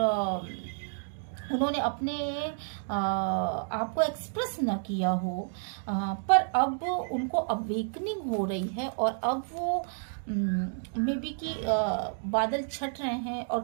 उन्होंने अपने आप को एक्सप्रेस ना किया हो, पर अब उनको अवेकनिंग हो रही है, और अब वो मे बी कि बादल छट रहे हैं और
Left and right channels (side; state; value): left; silent; digital silence